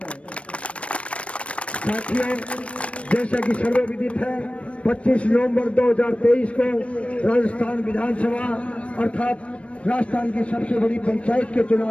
हूँ। साथियों, जैसा कि सर्वविदित है 25 नवंबर 2023 को राजस्थान विधानसभा अर्थात राजस्थान की सबसे बड़ी पंचायत के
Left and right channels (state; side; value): late; right; 0.062 ms